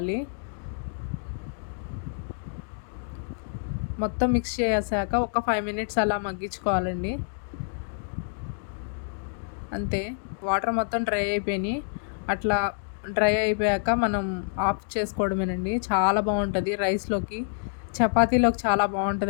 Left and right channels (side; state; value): right; silent; digital silence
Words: మొత్తం మిక్స్ చేసాక ఒక 5 మినిట్స్ అలా మగ్గించుకోవాలండి. అంతే, వాటర్ మొత్తం డ్రై అయిపోయినాయి. అట్లా డ్రై అయిపోయాక మనం ఆఫ్ చేసుకోవడమేనండి. చాలా బాగుంటుంది రైస్లోకి, చపాతీలోకి చాలా